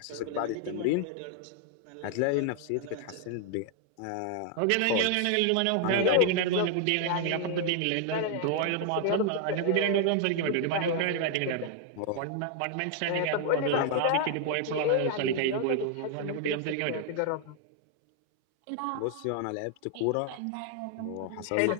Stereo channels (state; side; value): different; both; correlation 0.00